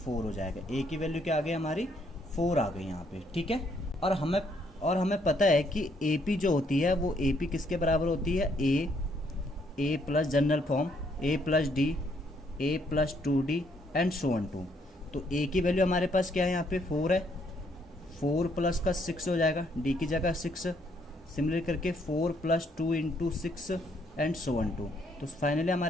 हो जाएगा। A की वैल्यू क्या आ गई हमारी, 4 आ गई यहाँ पे, ठीक है। और हमें पता है कि AP जो होती है वो AP किसके बराबर होती है, A plus general form A plus D, A plus 2D and so on to. तो A की वैल्यू हमारे पास क्या है, यहाँ पे 4 है, 4 प्लस का 6 हो जाएगा, D की जगह 6, सिमिलर करके 4 plus 2 into 6 and so on to. तो फाइनली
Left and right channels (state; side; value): normal; both; correlation 0.70